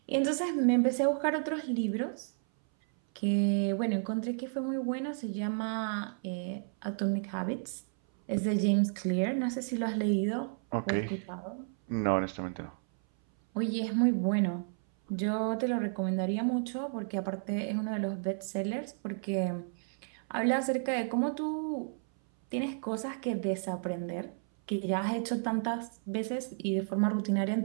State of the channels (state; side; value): silent; left; 56 dB below the other